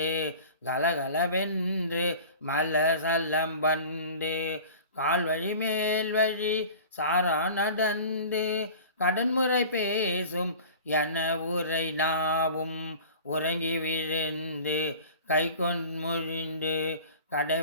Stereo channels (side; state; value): both; inverted; correlation -0.41